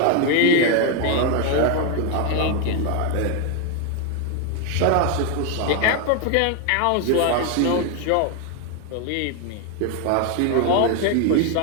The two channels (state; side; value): different; both; correlation 0.01